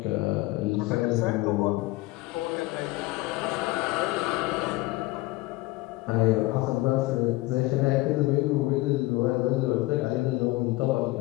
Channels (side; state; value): right; quieter; 20.0 dB